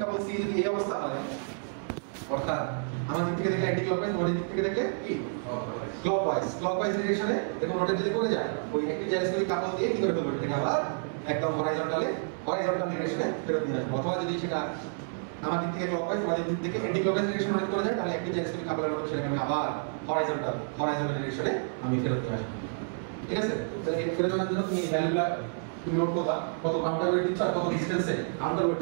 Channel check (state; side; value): silent; left; 58 dB below the other